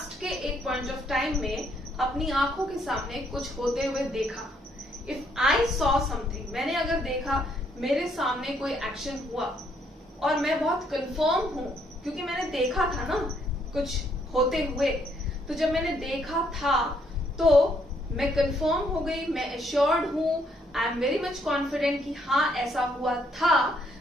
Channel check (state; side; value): normal; both; correlation 0.70